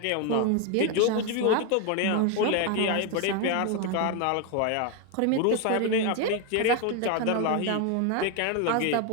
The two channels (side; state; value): both; different; correlation 0.01